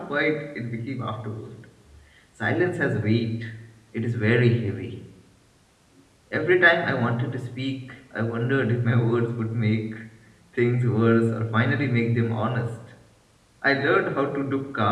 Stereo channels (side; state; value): both; identical; correlation 1.00